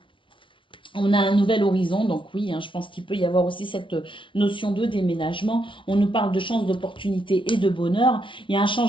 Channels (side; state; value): right; late; 0.25 ms